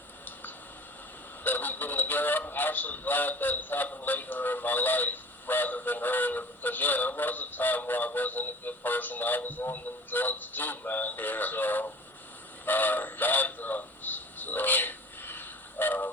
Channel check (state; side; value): normal; both; correlation 0.42